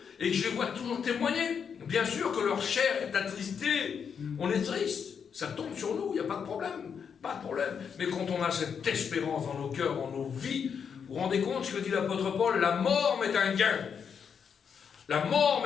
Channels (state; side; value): quieter; right; 6.9 dB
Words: et que je les vois toujours témoigner. Bien sûr que leur chair est attristée. On est triste. Ça tombe sur nous, il n'y a pas de problème. Pas de problème. Mais quand on a cette espérance dans nos cœurs, dans nos vies, vous vous rendez compte ce que dit l'apôtre Paul? La mort m'est un gain. La mort